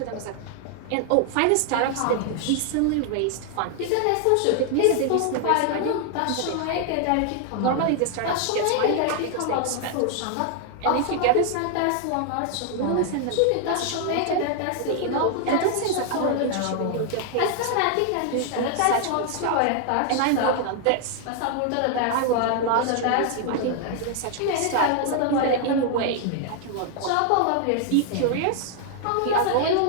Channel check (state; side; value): different; both; correlation 0.00